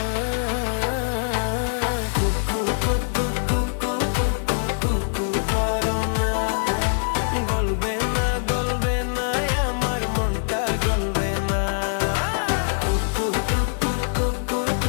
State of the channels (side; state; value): right; silent; 63 dB below the other